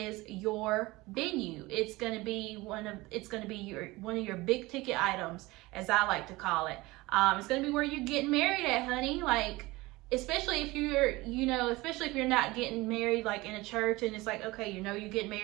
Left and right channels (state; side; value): quieter; left; 21.0 dB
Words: your venue. It's going to be one of your big ticket items, as I like to call it. It's going to be where you're getting married at, honey. Like, especially if you're not getting married like in a church and it's like, okay, you know, you're getting